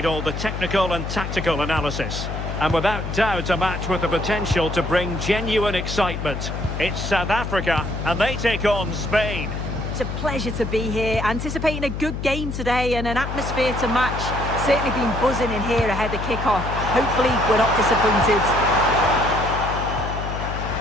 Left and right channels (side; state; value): left; noise; hum, 5 dB below the sound